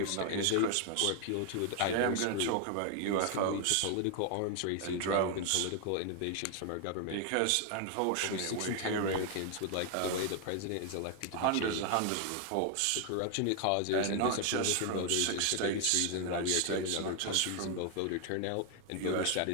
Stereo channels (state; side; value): different; both; correlation 0.00